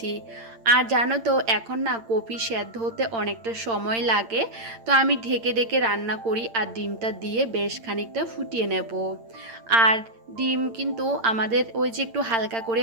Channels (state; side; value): late; left; 8.8 ms